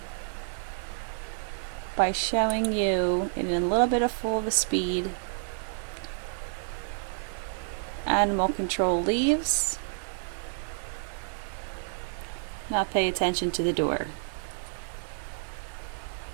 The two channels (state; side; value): silent; left; digital silence